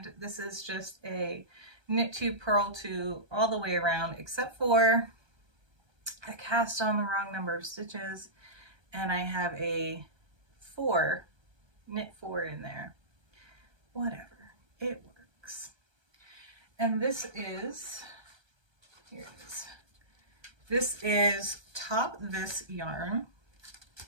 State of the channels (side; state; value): left; late; 1.3 ms